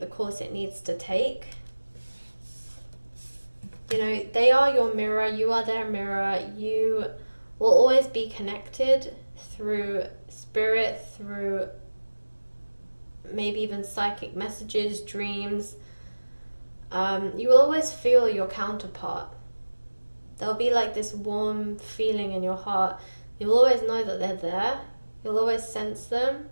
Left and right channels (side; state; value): both; inverted; correlation -1.00